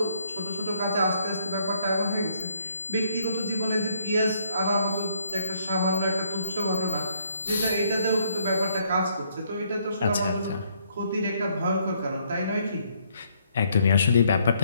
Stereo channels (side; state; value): both; inverted; correlation -0.69